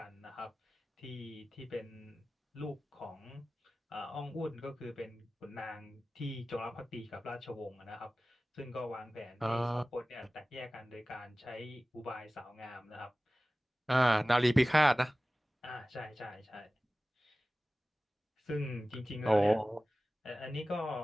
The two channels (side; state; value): both; normal; correlation 0.96